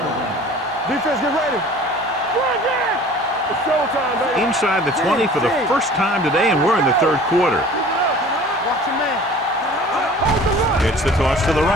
line. Defense, get ready. It's showtime, baby. Inside the 20 for the first time today, and we're in the third quarter. Watch your man. Gets the toss to the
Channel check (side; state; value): both; normal; correlation 0.45